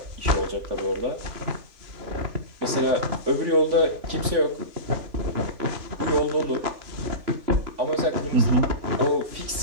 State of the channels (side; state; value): left; late; 3.5 ms